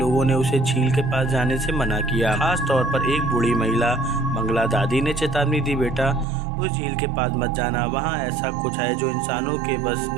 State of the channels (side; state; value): left; drops out; at 6.2 s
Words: ने उसे झील के पास जाने से मना किया। खास तौर पर एक बूढ़ी महिला मंगला दादी ने चेतावनी दी, बेटा उस झील के पास मत जाना, वहाँ ऐसा कुछ है जो इंसानों के बस